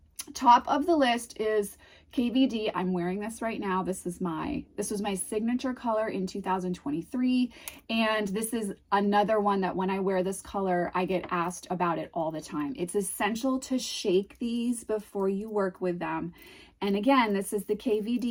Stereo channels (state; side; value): identical; both; correlation 1.00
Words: Top of the list is KVD. I'm wearing this right now. This was my signature color in 2023. And this is another one that when I wear this color, I get asked about it all the time. It's essential to shake these before you work with them. And again, this is the